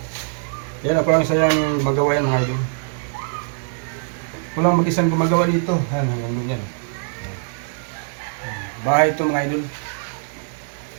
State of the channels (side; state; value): left; silent; 64 dB below the other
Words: Yan ako lang sa yung magawa yan mga idol. Kulang mag-isang gumagawa dito. Yan, hanggang doon yan. Bahay ito mga idol.